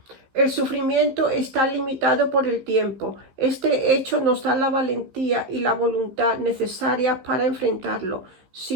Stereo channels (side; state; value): left; late; 15 ms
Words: El sufrimiento está limitado por el tiempo. Este hecho nos da la valentía y la voluntad necesarias para enfrentarlo.